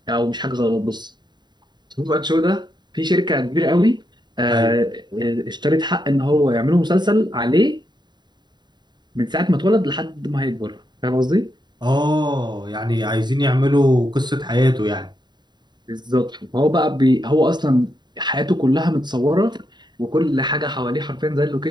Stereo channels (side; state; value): left; late; 0.21 ms